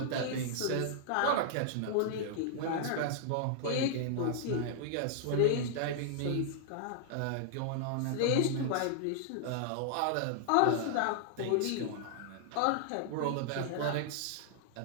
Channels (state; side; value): different; both; correlation -0.01